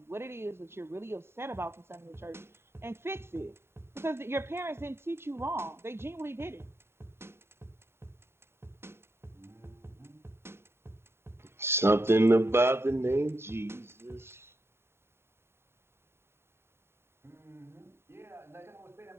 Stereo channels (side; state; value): left; late; 0.12 ms